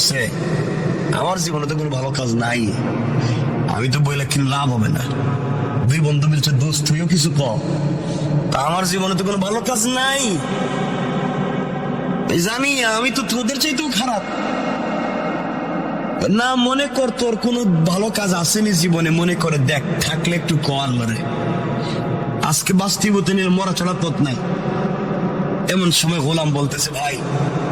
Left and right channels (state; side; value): noise; left; hum, 26 dB below the sound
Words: আমার জীবনে তো কোনো ভালো কাজ নাই, আমি তো বইলে কিন্তু লাভ হবে না। 2 বন্ধু মিলছে, দোস্ত তুইও কিছু কর, তা আমার জীবনে তো কোনো ভালো কাজ নাই, জানি আমি তো তোদের চাইতেও খারাপ। না মনে কর তোর কোনো ভালো কাজ আসেনি জীবনে, মনে করে দেখ, থাকলে একটু কর মারে, আজকে বাস্তবতা নিয়ে মরা ছাড়া পথ নাই। এমন সময় গোলাম বলতেছে, ভাই